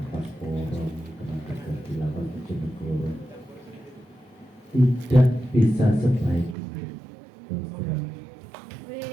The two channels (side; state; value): left; drops out; at 6.6 s